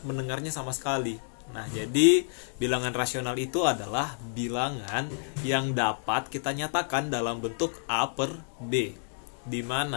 mendengarnya sama sekali. Nah, jadi bilangan rasional itu adalah bilangan yang dapat kita nyatakan dalam bentuk A per B, di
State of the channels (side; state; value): right; silent; digital silence